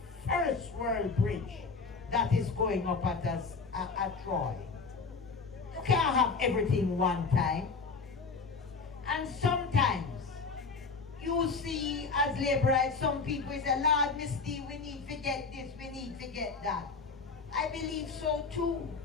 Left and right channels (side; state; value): right; quieter; 4.5 dB